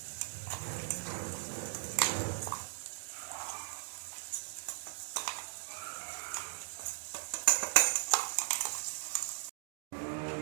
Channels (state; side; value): silent; left; digital silence